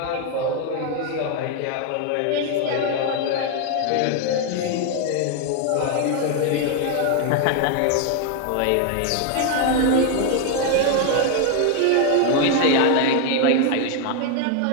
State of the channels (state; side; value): different; both; correlation 0.01